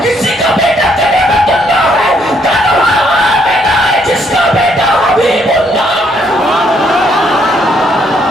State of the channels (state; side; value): normal; both; correlation 0.70